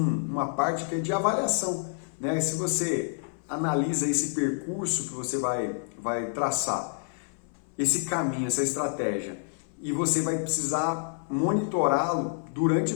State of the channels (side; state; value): right; silent; 57 dB below the other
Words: parte que é de avaliação, né? Se você analisa esse percurso que você vai traçar, esse caminho, essa estratégia, e você vai precisar monitorá-lo durante